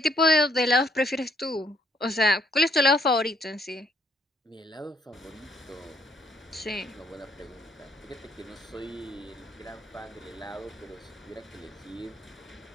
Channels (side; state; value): both; normal; correlation 0.68